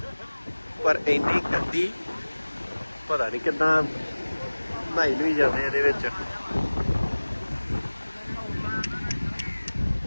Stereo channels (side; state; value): both; inverted; correlation -1.00